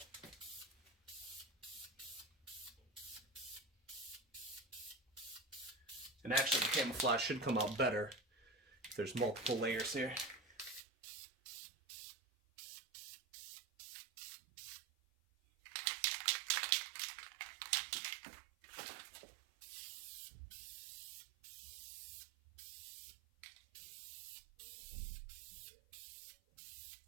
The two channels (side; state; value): left; drops out; at 10.8 s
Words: And actually the camouflage should come out better if there's multiple layers here.